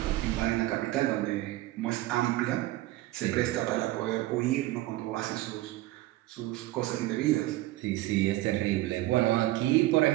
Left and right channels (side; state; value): left; quieter; 17.0 dB